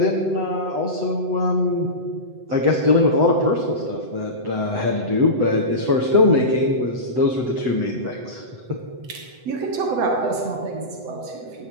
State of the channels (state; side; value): late; left; 8.0 ms